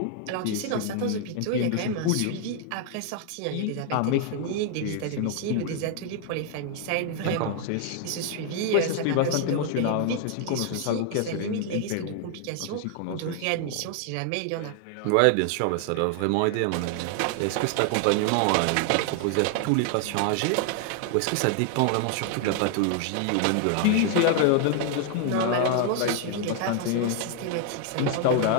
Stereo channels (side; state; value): both; different; correlation 0.00